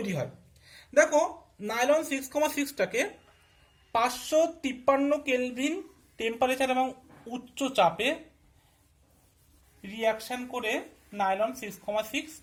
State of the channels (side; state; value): both; identical; correlation 1.00